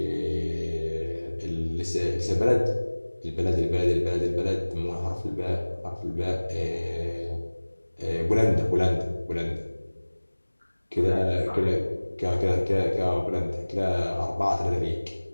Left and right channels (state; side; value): inverted; both; correlation -1.00